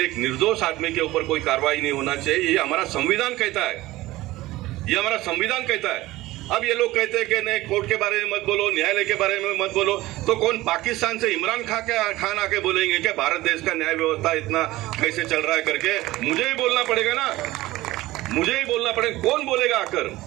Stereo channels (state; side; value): quieter; left; 17.8 dB